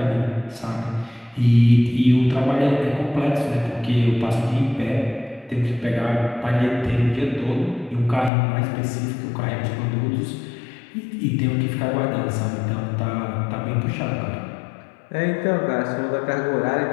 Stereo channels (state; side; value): drops out; right; at 8.3 s